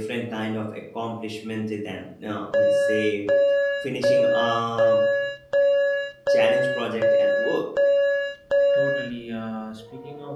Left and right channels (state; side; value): identical; both; correlation 1.00